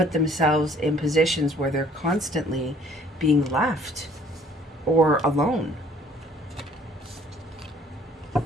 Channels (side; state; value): both; normal; correlation 0.57